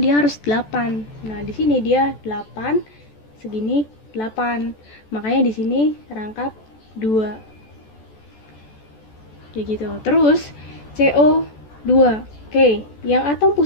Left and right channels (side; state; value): right; late; 14 ms